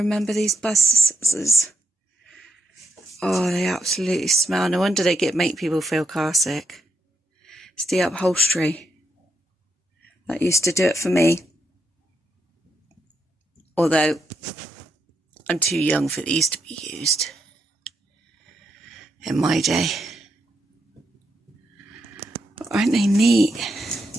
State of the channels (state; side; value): normal; both; correlation 0.80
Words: these buses? Oh, they absolutely smell. No wonder they make people feel car sick. It's the upholstery. That used to do it for me. Although, I'm too young for these to be used. In my day. But aren't they neat?